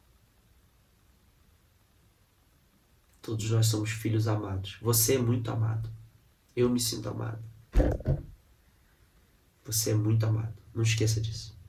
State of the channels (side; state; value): both; identical; correlation 1.00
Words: Todos nós somos filhos amados. Você é muito amado. Eu me sinto amado. Você é muito amado. Não esqueça disso.